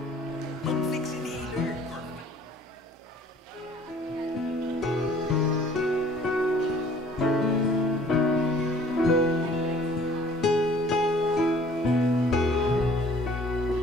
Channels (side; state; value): both; normal; correlation 0.54